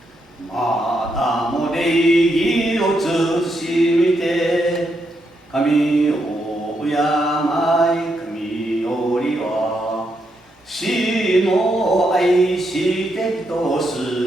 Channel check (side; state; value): both; normal; correlation 0.80